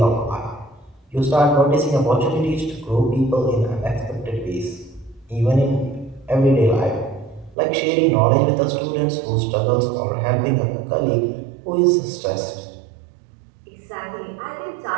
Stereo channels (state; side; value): drops out; left; at 7.6 s